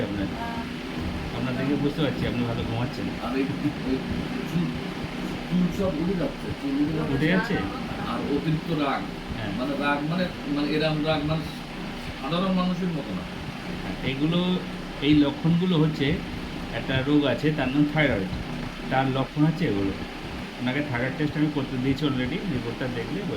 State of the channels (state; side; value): identical; both; correlation 1.00